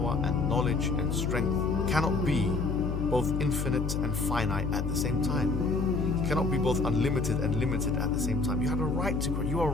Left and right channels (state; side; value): noise; left; hum, 2 dB below the sound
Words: and knowledge and strength, cannot be both infinite and finite at the same time. He cannot be both unlimited and limited at the same time. You had a right to question. You are